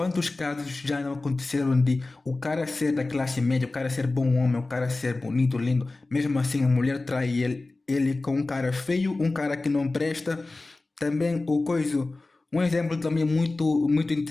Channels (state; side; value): quieter; right; 3.2 dB